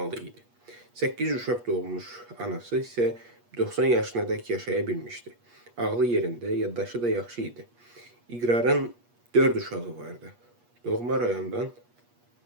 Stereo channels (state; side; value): late; left; 8.4 ms